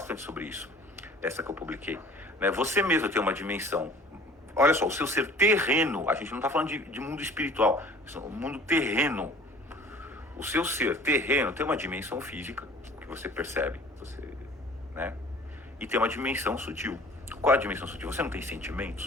sobre isso, essa que eu publiquei, né? Você mesmo tem uma dimensão, olha só, o seu ser terreno, a gente não está falando de mundo espiritual, o mundo terreno, o seu ser terreno tem uma dimensão física, que você percebe, né? E tem uma dimensão sutil. Qual é a dimensão sutil? Você não tem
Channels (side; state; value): both; normal; correlation 0.48